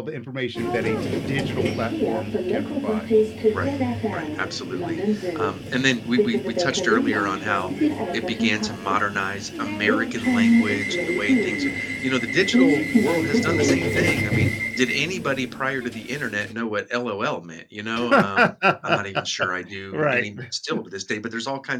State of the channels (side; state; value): both; identical; correlation 1.00